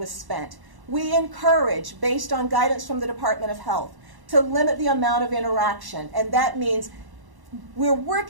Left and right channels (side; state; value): left; late; 1.1 ms